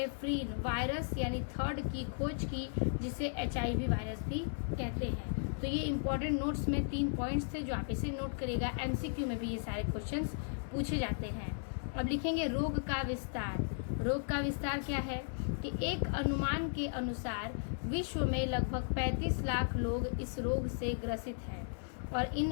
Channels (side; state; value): right; silent; digital silence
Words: वायरस यानी थर्ड की खोज की, जिसे HIV वायरस भी कहते हैं। तो ये इंपॉर्टेंट नोट्स में 3 पॉइंट्स थे जो आप इसे नोट करिएगा। MCQ में भी ये सारे क्वेश्चंस पूछे जाते हैं। अब लिखेंगे रोग का विस्तार। रोग का विस्तार क्या है कि एक अनुमान के अनुसार विश्व में लगभग 35 लाख लोग इस रोग से ग्रसित हैं और